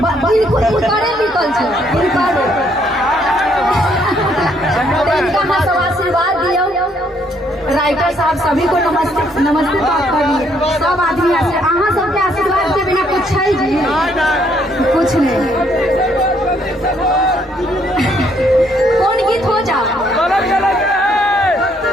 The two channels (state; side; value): normal; both; correlation 0.69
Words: इनकोरे लिखल छै, इनका हम सब आशीर्वाद दियो। राइटर साहब सभी को नमस्ते, नमस्ते करिए। सब आदमी अहाँ सबके आशीर्वाद के बिना कुछ है जी, कुछ नहीं। कौन गीत हो जाओ